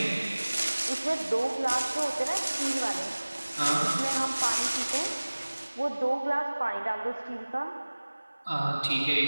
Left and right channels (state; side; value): inverted; both; correlation -1.00